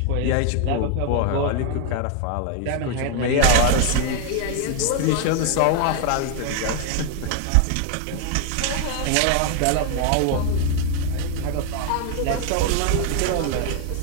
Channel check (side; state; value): both; different; correlation 0.00